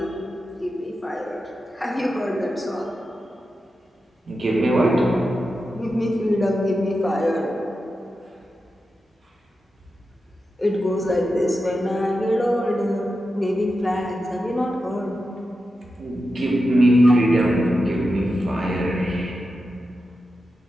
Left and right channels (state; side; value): normal; both; correlation 0.90